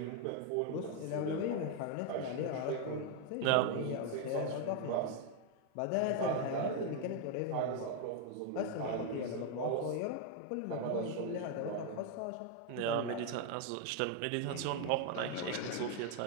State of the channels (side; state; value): both; different; correlation 0.01